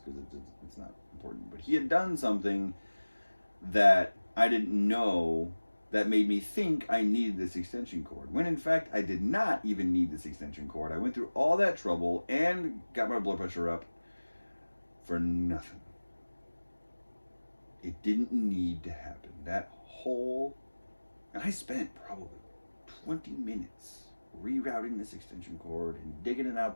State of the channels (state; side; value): inverted; both; correlation -1.00